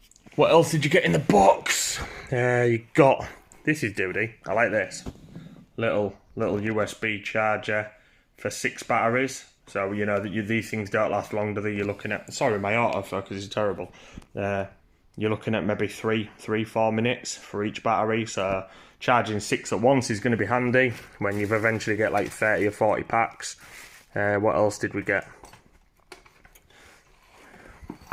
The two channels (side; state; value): both; identical; correlation 1.00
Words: What else did you get in the box? You got, this is duty, I like this. Little USB charger for 6 batteries. So, you know, that these things don't last long, do they? You're looking at, sorry, my autofocus is terrible. You're looking at maybe 3-4 minutes for each battery. So charging 6 at once is going to be handy when you've eventually get like 30 or 40 packs. What else did we get?